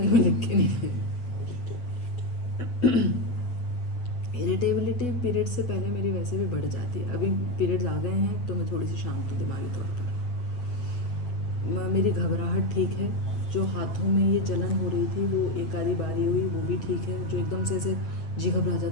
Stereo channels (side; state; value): right; late; 8.1 ms